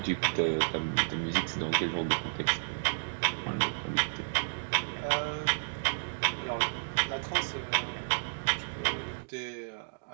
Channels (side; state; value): left; silent; digital silence